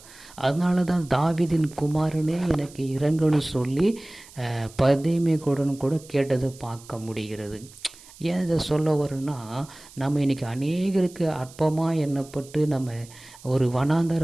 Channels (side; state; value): right; noise; hiss, 21 dB below the sound